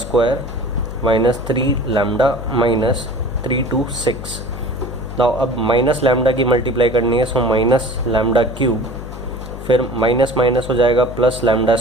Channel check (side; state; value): left; noise; hum, 11 dB below the sound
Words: minus 3 lambda minus 3 to 6। Now अब माइनस लैम्डा की मल्टीप्लाई करनी है, सो माइनस लैम्डा क्यूब, फिर माइनस माइनस हो जाएगा प्लस लैम्डा